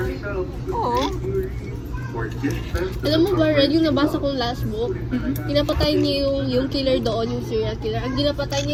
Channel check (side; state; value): both; identical; correlation 1.00